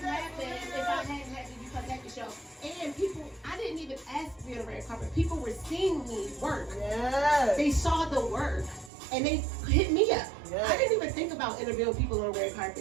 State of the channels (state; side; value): drops out; left; at 8.9 s